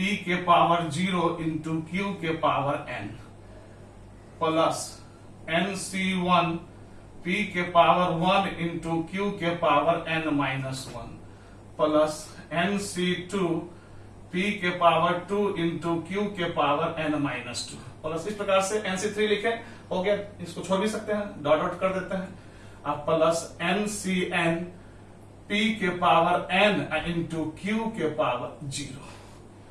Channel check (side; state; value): both; identical; correlation 1.00